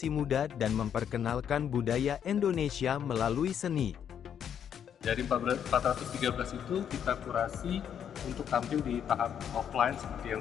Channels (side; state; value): right; quieter; 8.7 dB